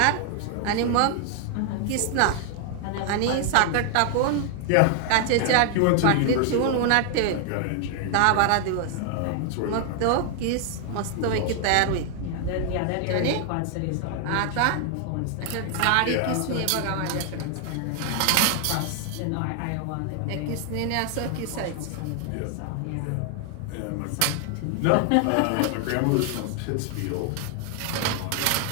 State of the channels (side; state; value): both; different; correlation 0.00